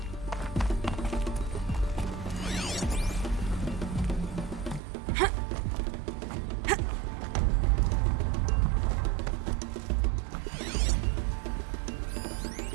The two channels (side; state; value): left; drops out; at 4.8 s